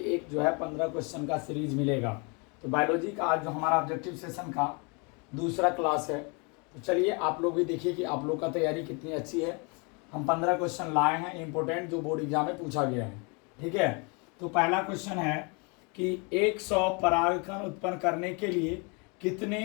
एक जो है 15 क्वेश्चन का सीरीज मिलेगा। तो बायोलॉजी का आज जो हमारा ऑब्जेक्टिव सेशन का दूसरा क्लास है। तो चलिए आप लोग भी देखिए कि आप लोग का तैयारी कितनी अच्छी है। हम 15 क्वेश्चन लाए हैं इम्पोर्टेंट, जो बोर्ड एग्जाम में पूछा गया है। ठीक है, तो पहला क्वेश्चन है कि 100 परागकण उत्पन्न करने के लिए कितने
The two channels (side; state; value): right; quieter; 32.2 dB